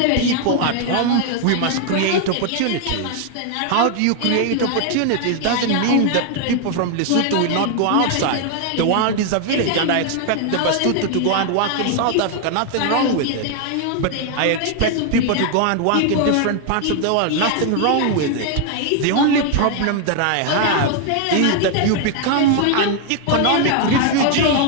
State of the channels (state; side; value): different; both; correlation 0.00